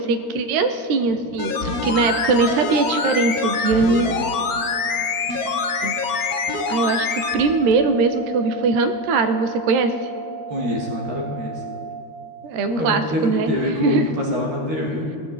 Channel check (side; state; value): left; late; 13 ms